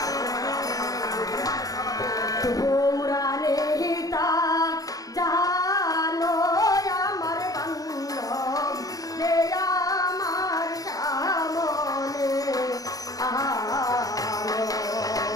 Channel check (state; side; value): late; right; 0.18 ms